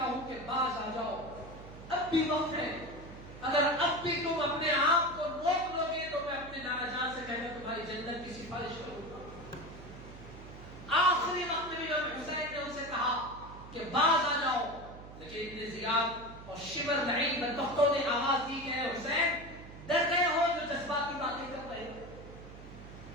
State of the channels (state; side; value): noise; right; hum, 15 dB below the sound